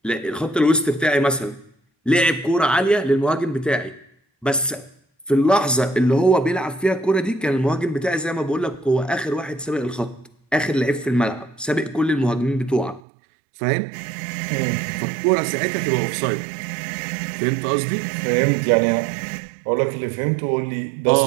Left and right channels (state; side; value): drops out; left; at 13.0 s